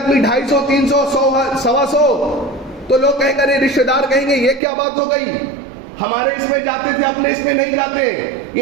250 300 100 تو لوگ کہیں گے، رشتہ دار کہیں گے یہ کیا بات ہو گئی، ہمارے اس میں جاتے تھے اپنے اس میں نہیں جاتے.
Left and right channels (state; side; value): drops out; left; at 4.6 s